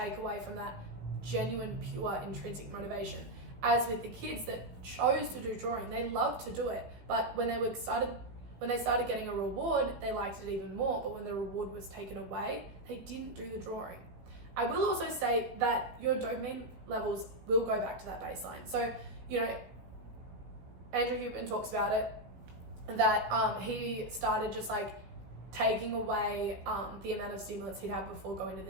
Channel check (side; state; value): left; late; 16 ms